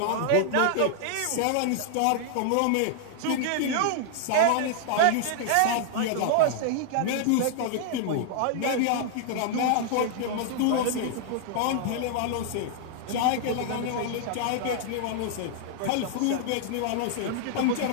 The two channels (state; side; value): different; both; correlation -0.01